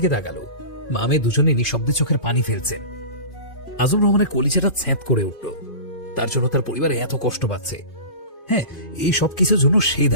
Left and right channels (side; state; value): right; late; 2.5 ms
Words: তাকালো। মামে দুজনে নিঃশব্দে চোখের পানি ফেলছেন। আজম রহমানের কলিজাটা ছেঁত করে উঠল। তার জন্য তার পরিবার এত কষ্ট পাচ্ছে। হ্যাঁ, এই সব কিছুর জন্য সে